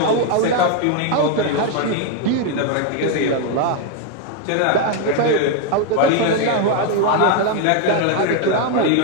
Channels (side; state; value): both; different; correlation 0.01